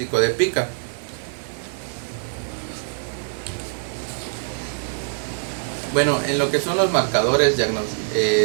de pica. Bueno, en lo que son los marcadores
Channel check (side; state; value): left; silent; digital silence